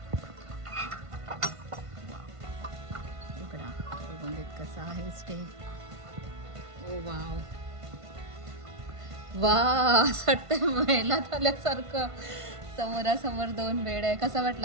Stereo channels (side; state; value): left; late; 1.5 ms